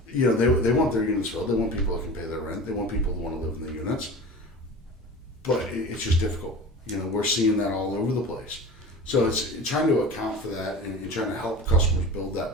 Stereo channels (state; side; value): normal; both; correlation 0.35